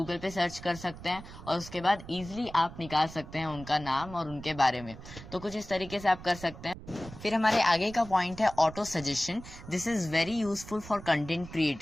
पे सर्च कर सकते हैं और उसके बाद इजीली आप निकाल सकते हैं उनका नाम और उनके बारे में। तो कुछ इस तरीके से आप कर सकते हैं। फिर हमारे आगे का पॉइंट है auto suggestion. This is very useful for content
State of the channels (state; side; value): noise; right; rumble, 15 dB below the sound